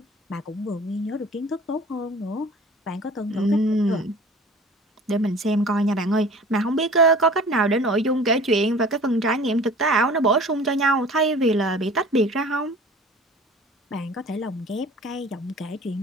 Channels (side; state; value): both; normal; correlation 0.44